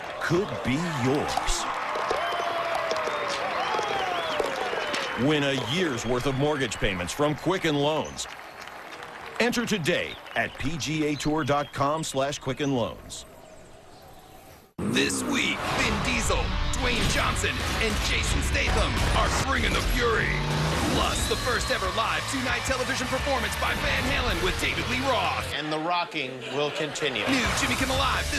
could be yours. Win a year's worth of mortgage payments from Quicken Loans. Enter today at pgatour.com/Quicken Loans. This week, Vin Diesel, Dwayne Johnson, and Jason Statham are bringing the fury. Plus, the first ever live two-night television performance by Van Halen with David Lee Roth. And the rocking will continue. New Jimmy Kimmel Live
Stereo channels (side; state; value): both; identical; correlation 1.00